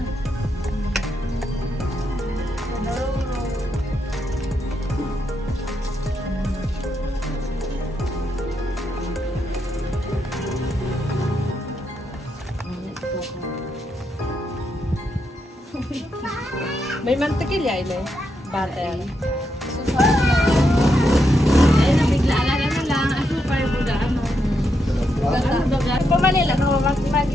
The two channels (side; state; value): both; normal; correlation 0.82